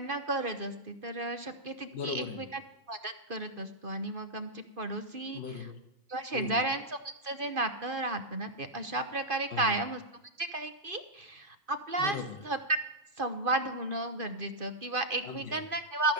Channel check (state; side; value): late; left; 2.5 ms